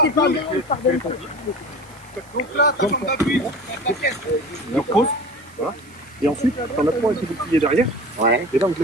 t'es pas bien, il pardonne tout. Donc là, t'as ton appui. Alors pause, voilà. Et ensuite, t'en as 3 avec les boucliers derrière. Ouais. Et là, donc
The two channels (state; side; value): noise; right; hiss, 26 dB below the sound